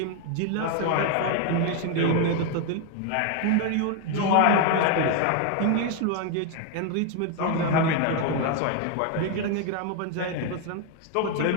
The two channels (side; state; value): both; different; correlation 0.01